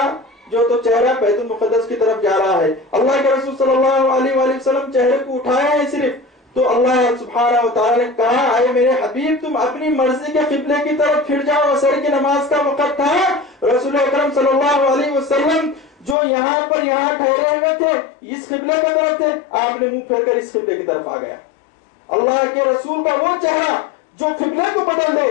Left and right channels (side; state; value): right; drops out; at 16.2 s